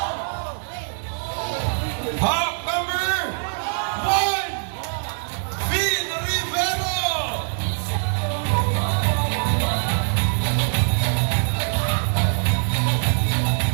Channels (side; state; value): left; silent; 63 dB below the other